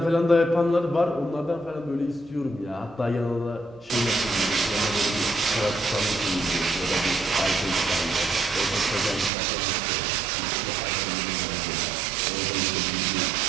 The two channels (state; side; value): drops out; left; at 9.3 s